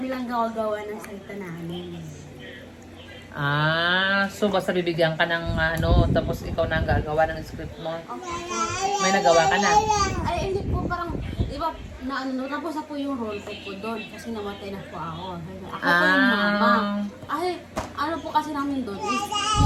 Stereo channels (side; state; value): both; identical; correlation 1.00